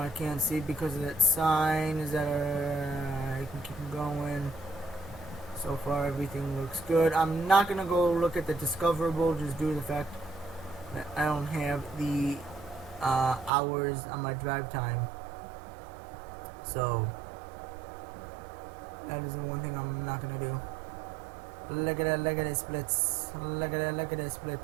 I can't see because of that sign. Is that I can keep going. So far everything looks good. I'm not gonna go look at the discoverable just due to the fact that I don't have the hours on my drive time. So that is the one thing I'm not gonna do. Look at that splits. Look at that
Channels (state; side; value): drops out; left; at 13.5 s